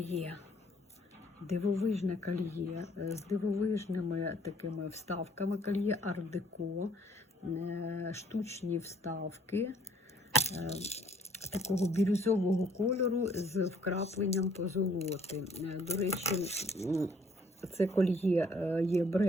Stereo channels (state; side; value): normal; both; correlation 0.62